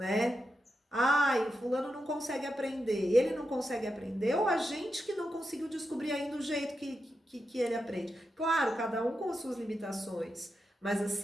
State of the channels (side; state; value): both; normal; correlation 0.87